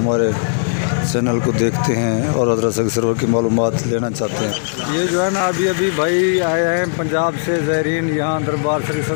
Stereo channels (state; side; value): silent; right; digital silence